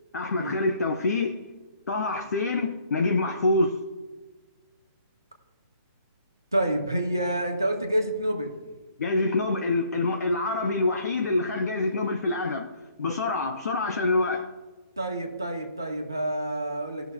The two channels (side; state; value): both; inverted; correlation -0.64